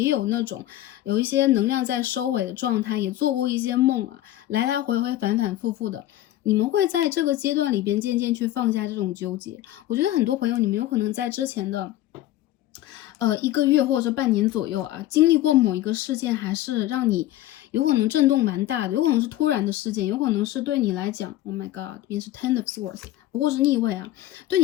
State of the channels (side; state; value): right; quieter; 14.3 dB